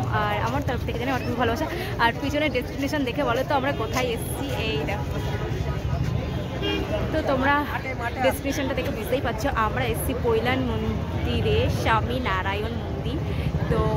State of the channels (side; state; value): both; identical; correlation 1.00